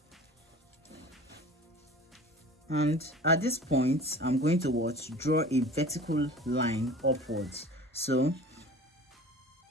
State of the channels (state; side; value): normal; both; correlation 0.41